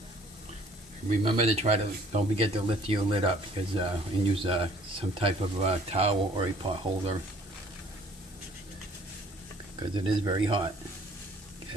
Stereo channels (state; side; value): normal; both; correlation 0.56